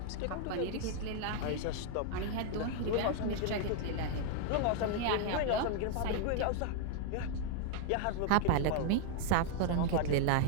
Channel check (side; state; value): both; different; correlation 0.00